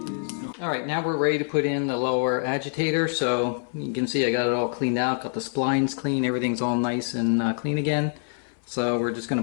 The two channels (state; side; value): silent; right; 61 dB below the other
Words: Alright, now we're ready to put in the lower agitator. So you can see I got it all cleaned out, got the splines clean, everything's all nice and clean again. So we're just going